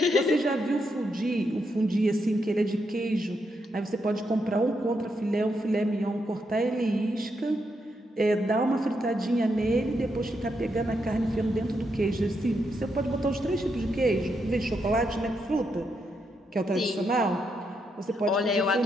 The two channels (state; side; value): normal; both; correlation 0.81